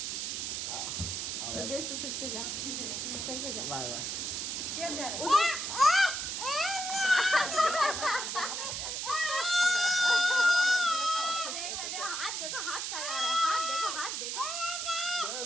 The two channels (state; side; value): noise; right; hiss, 3 dB below the sound